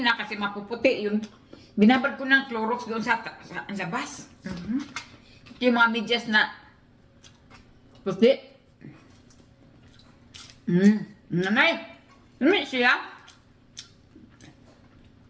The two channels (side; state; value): both; identical; correlation 1.00